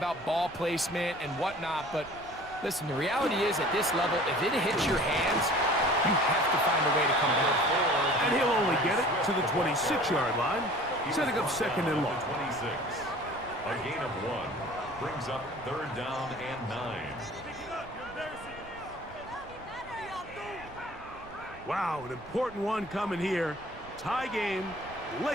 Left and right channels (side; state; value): right; noise; rumble, 19 dB below the sound